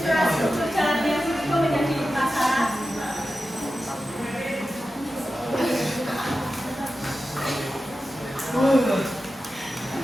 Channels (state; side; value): normal; both; correlation 0.93